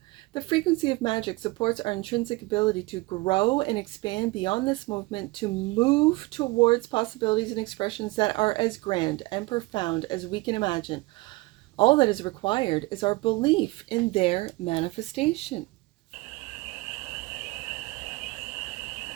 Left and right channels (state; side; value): quieter; left; 22.7 dB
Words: The frequency of magic supports our intrinsic ability to grow and expand beyond this movement, to move towards possibilities and expressions that are as grand and profound as we can imagine. All that is required is our belief in their manifestation.